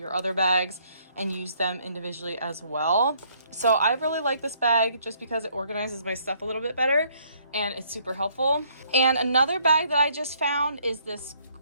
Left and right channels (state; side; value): inverted; both; correlation -0.65